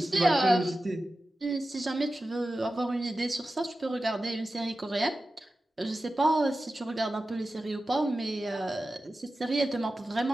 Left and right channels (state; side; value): normal; both; correlation 0.94